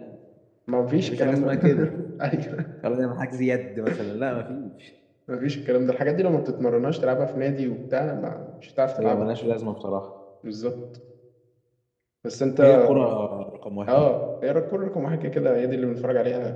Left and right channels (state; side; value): identical; both; correlation 1.00